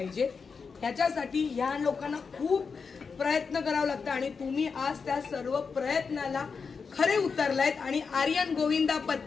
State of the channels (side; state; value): right; quieter; 5.3 dB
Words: ह्याच्यासाठी ह्या लोकांना खूप प्रयत्न करावं लागतं आणि तुम्ही आज त्या सर्व प्रयत्नाला खरे उतरलायत आणि आर्यन गोविंदा